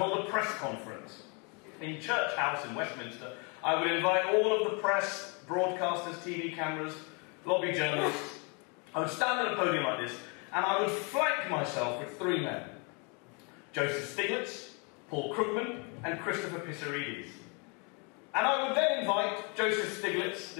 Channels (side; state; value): right; quieter; 33.6 dB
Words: a press conference in Church House in Westminster. I would invite all of the press, broadcasters, TV cameras, lobby journalists. I would stand at a podium like this, and I would flank myself with three men. Joseph Stiglitz, Paul Krugman, and Christopher Pissarides. And I would then invite Joseph Stiglitz,